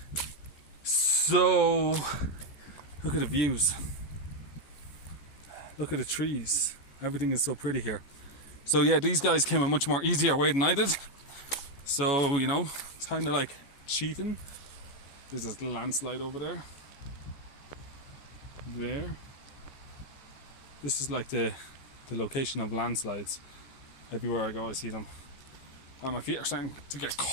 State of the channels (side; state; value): right; late; 14 ms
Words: So, look at the views. Look at the trees. Everything is so pretty here. So yeah, these guys came a much more easier way than I did. So, you know, it's kind of like cheating. There's this landslide over there. There. This is like the location of landslides. Everywhere I go I see them. My feet are starting to get